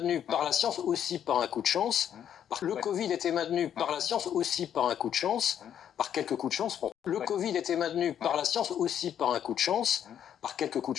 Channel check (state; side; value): quieter; right; 9.5 dB